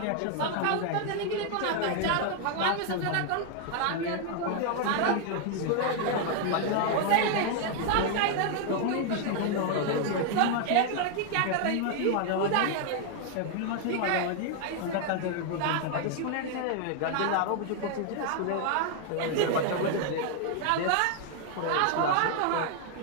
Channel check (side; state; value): both; different; correlation 0.00